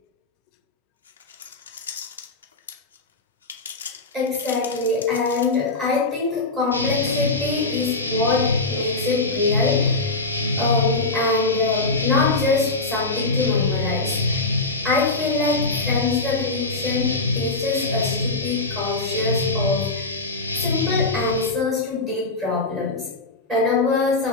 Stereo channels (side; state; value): right; quieter; 3.3 dB